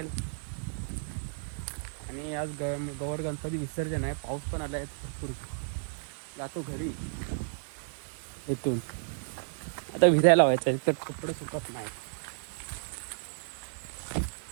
आणि आज गौर गणपती विसर्जन आहे. पाऊस पण आला आहे भरपूर. जातो घरी इथून. आता भिजायला व्हायचं आहे, तर कपडे सुकत नाही.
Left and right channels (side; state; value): left; silent; digital silence